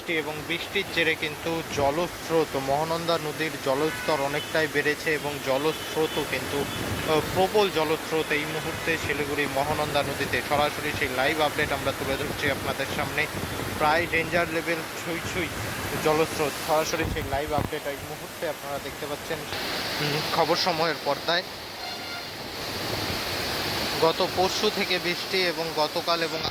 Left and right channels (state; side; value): identical; both; correlation 1.00